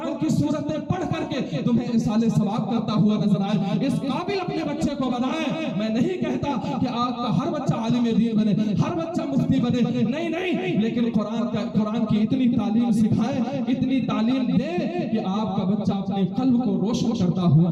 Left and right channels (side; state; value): both; identical; correlation 1.00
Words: کی سورتیں پڑھ کر کے تمہیں اصال ثواب کرتا ہوا نظر آئے. اس قابل اپنے بچے کو بنائیں. میں نہیں کہتا کہ آپ کا ہر بچہ عالم دین بنے, ہر بچہ مفتی بنے, نہیں, لیکن قرآن کی اتنی تعلیم سکھائیں, اتنی تعلیم دے کہ آپ کا بچہ اپنے قلب کو روشن کرتا ہوا